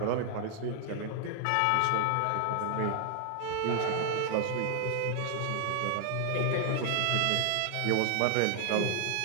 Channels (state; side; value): different; both; correlation 0.00